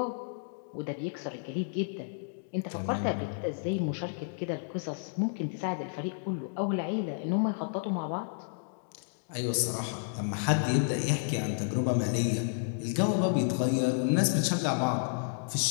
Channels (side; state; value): right; silent; digital silence